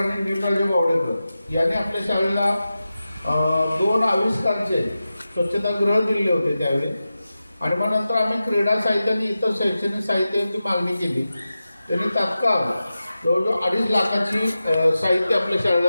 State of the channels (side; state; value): both; inverted; correlation -0.93